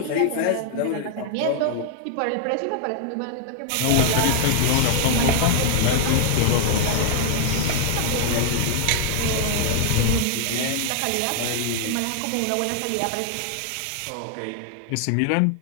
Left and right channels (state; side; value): different; both; correlation 0.00